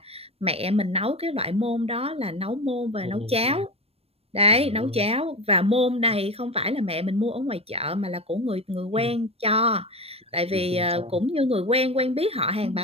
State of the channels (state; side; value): late; left; 0.29 ms